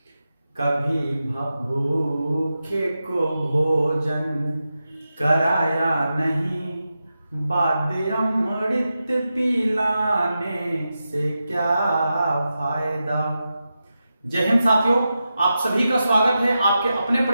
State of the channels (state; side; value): inverted; both; correlation -0.90